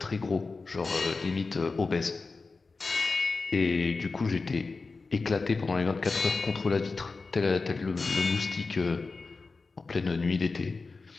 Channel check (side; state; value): right; quieter; 4.0 dB